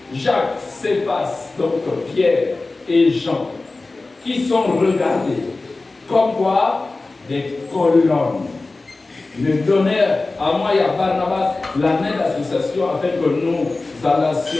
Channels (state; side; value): quieter; right; 3.4 dB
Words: Jacques, Céphas, donc Pierre et Jean, qui sont regardés comme quoi des colonnes, me donnèrent à moi et à Barnabas la main d'association afin que nous